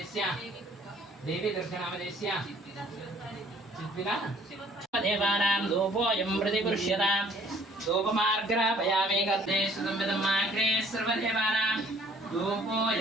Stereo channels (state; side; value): normal; both; correlation 0.57